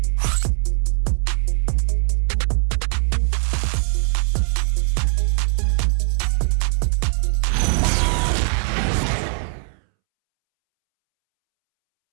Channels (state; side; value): silent; left; 66 dB below the other